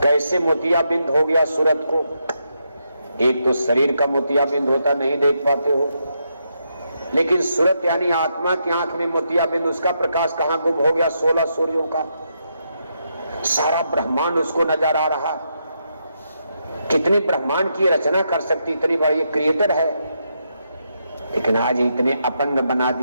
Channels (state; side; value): inverted; both; correlation -0.81